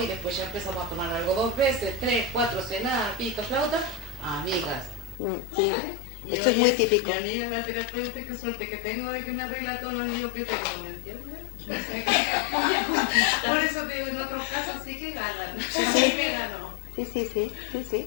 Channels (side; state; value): right; drops out; at 5.2 s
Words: y después ya empezamos a tomar algo 2 veces, 3, 4, cenar, pito, flauta, amigas. ¿Vale? Y eso hoy es muy es típico. mi amiga la terapeuta, qué suerte que tengo de que me arregla todo el lío que tengo, ¿me entiendes? Por eso te digo, en otros casos sí que ganan, a mí me ganó. Sí, es